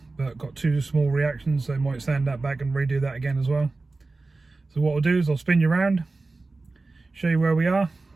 but got 2 small reactions, so I might sand that back and redo that again as well. So what I'll do is I'll spin you around, show you where we are,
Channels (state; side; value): quieter; left; 3.5 dB